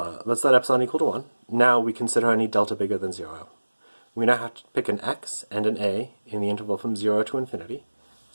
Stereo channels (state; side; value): inverted; both; correlation -1.00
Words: Let's let epsilon equal to 1. Now we consider any delta bigger than 0. We now have to pick an x and an a in the interval from 0 to infinity,